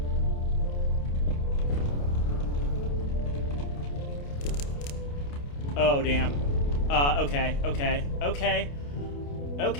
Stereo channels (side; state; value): right; late; 28 ms